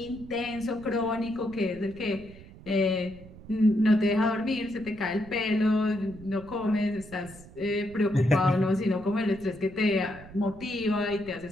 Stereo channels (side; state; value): right; noise; rumble, 18 dB below the sound